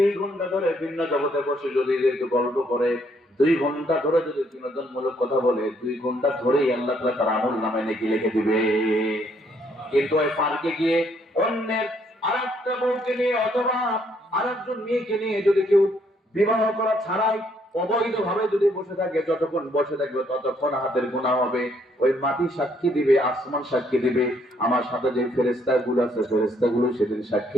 ঘন্টা ধরে ভিন্ন জগতে বসে যদি একটু গল্প করে, 2 ঘন্টা ধরে যদি বিনোদনমূলক কথা বলে, 2 ঘন্টা ধরেই আল্লাহ তাআলা তার আমল নামায় নেকি লিখে দিবে। কিন্তু ওই পার্কে গিয়ে অন্যের আরেকটা বউকে নিয়ে অথবা আরেকজন মেয়েকে নিয়ে যদি কেউ বিবাহ করা ছাড়াই অবৈধ ভাবে যদি বসে থাকে, যতক্ষণ বসে থাকবে ততক্ষণ হাতের গুনাহ হবে। ওই মাটি সাক্ষী দিবে, আসমান সাক্ষী দিবে, আমার সাথে যে ফেরেশতাগুলো আছে ফেরেশতাগুলো সেদিন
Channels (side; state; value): both; normal; correlation 0.69